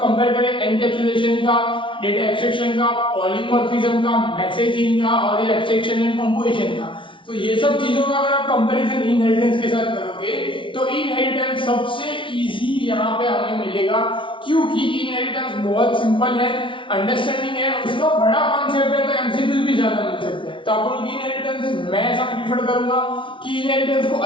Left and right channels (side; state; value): right; late; 0.25 ms